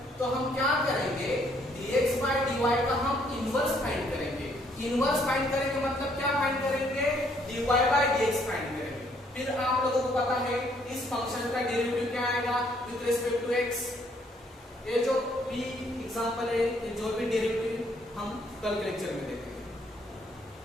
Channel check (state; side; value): normal; both; correlation 0.67